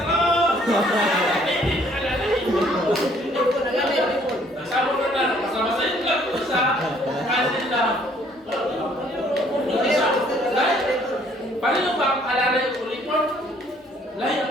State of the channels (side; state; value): both; normal; correlation 0.62